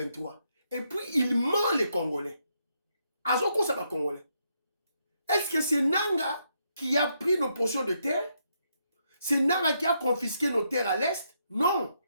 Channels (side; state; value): both; inverted; correlation -0.78